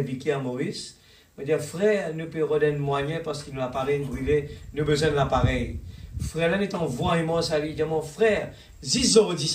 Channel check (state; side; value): identical; both; correlation 1.00